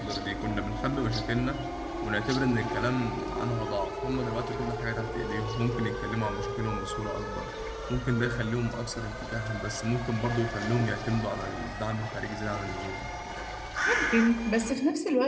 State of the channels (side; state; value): both; identical; correlation 1.00